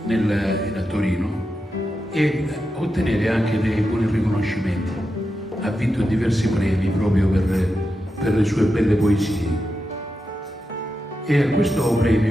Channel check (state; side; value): normal; both; correlation 0.88